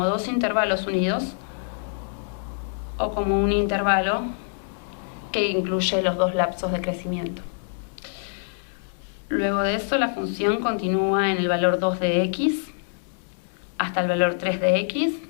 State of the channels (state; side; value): silent; right; digital silence